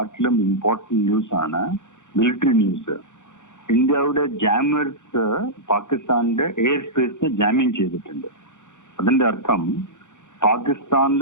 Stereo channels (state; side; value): late; right; 0.85 ms